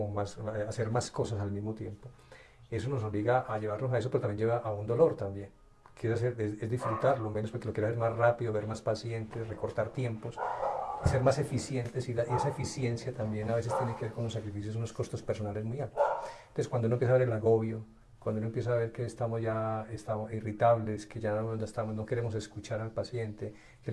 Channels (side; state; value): both; identical; correlation 1.00